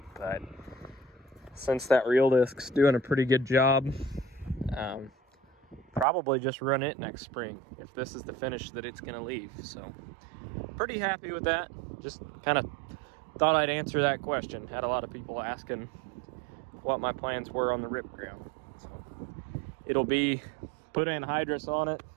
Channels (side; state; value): left; drops out; at 6.1 s